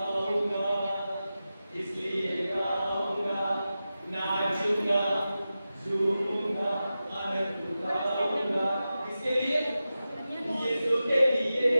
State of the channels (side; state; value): both; inverted; correlation -0.93